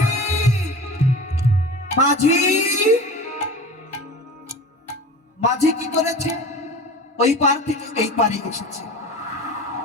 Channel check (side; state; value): both; normal; correlation 0.35